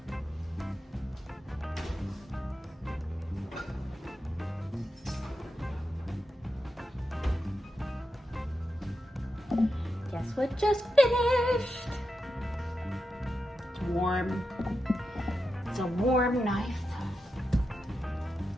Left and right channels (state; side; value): normal; both; correlation 0.88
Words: Guess what just finished? It's warm. It's a warm knife.